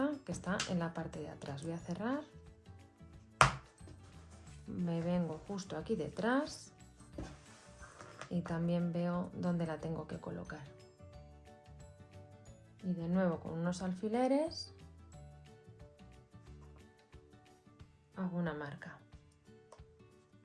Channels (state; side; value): identical; both; correlation 1.00